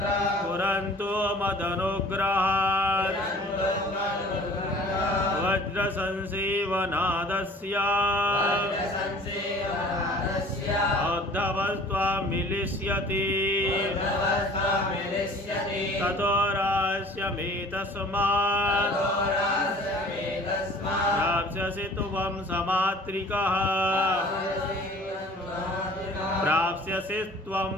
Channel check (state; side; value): normal; both; correlation 0.48